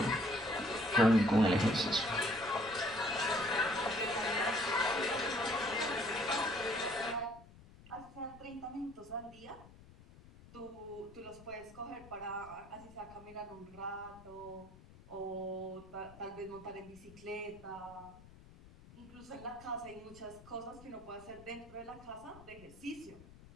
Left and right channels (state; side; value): noise; left; rumble, 20 dB below the sound